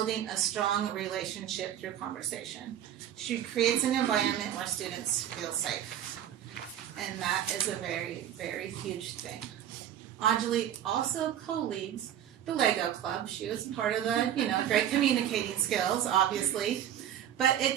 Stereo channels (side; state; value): left; quieter; 10.7 dB